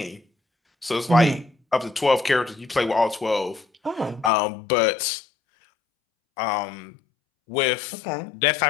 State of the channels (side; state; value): right; drops out; at 4.3 s